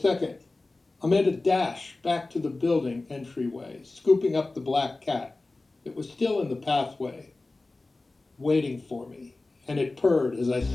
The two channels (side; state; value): right; quieter; 3.2 dB